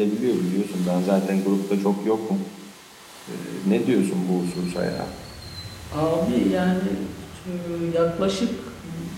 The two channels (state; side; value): identical; both; correlation 1.00